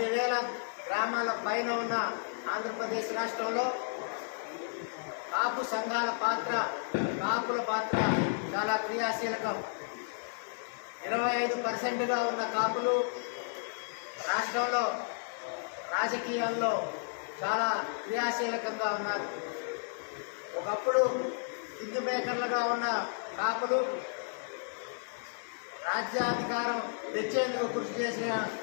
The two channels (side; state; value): right; silent; 56 dB below the other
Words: గ్రామాల పైన ఉన్న ఆంధ్రప్రదేశ్ రాష్ట్రంలో కాపు సంఘాల పాత్ర, కాపుల పాత్ర చాలా క్రియాశీలకం. 25% ఉన్న కాపులు రాష్ట్రంలో రాజకీయాల్లో చాలా క్రియాశీలకంగా ఉన్నారు. ఒకప్పుడు కింగ్ మేకర్లుగా ఉన్న కాపులు రాజ్యాధికారం తెచ్చేందుకు కృషి చేసిన